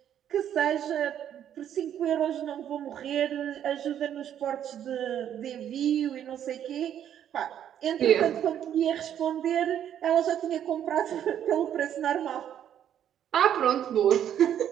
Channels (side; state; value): left; quieter; 10.0 dB